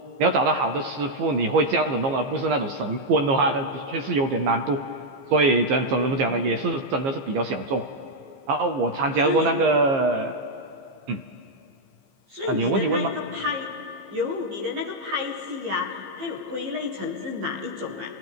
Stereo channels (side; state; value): left; late; 15 ms